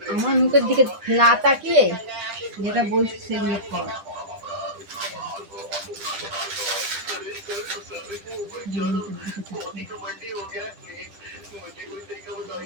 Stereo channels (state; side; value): late; left; 10 ms